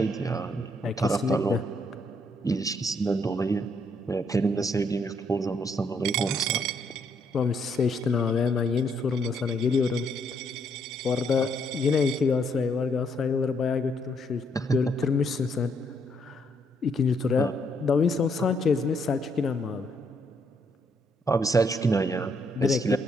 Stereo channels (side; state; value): both; normal; correlation 0.73